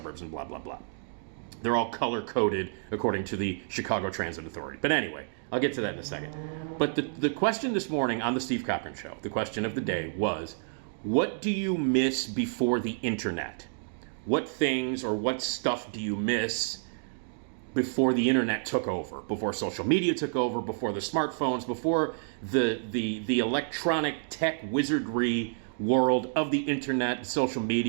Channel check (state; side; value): silent; left; digital silence